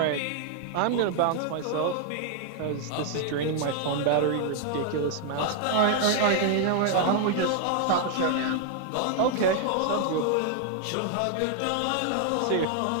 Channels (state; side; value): different; both; correlation 0.00